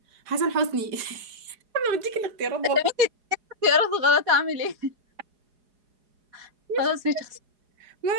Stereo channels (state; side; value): late; left; 4.8 ms